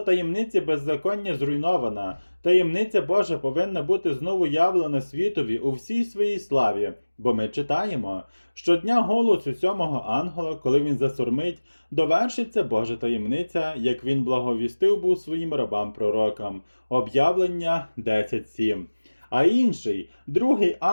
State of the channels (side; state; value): both; inverted; correlation -1.00